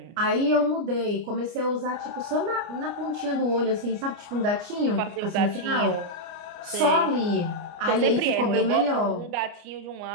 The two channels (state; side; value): late; left; 29 ms